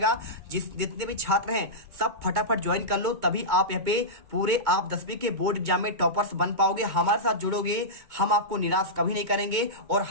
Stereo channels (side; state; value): left; late; 2.2 ms